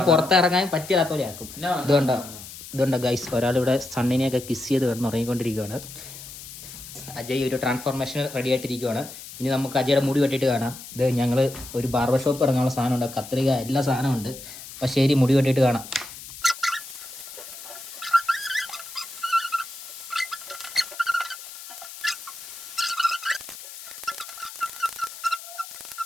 പുറത്തിറങ്ങാൻ പറ്റാത്ത പോലെ ആക്കും. ഇതുകൊണ്ടോ ഗൈസ്, ഒരാളിവിടെ സണ്ണിനെയൊക്കെ കിസ് ചെയ്ത് കിടന്ന് ഉറങ്ങിക്കൊണ്ടിരിക്കുകയാണ്. അജയ് ഒരു ട്രാൻസ്ഫോർമേഷൻ റെഡി ആയിട്ടിരിക്കുകയാണ്. ഇനി നമുക്ക് അജയുടെ മുടി വെട്ടിയിട്ട് കാണാം. ഇത് ഞങ്ങൾ ഒരു ബാർബർ ഷോപ്പ് ഇറങ്ങാനുള്ള സാധനമുണ്ട്, കത്രിക എല്ലാ സാധനമുണ്ട്. അപ്പം ശരി, മുടി വെട്ടിയിട്ട് കാണാം.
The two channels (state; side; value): noise; left; hiss, 14 dB below the sound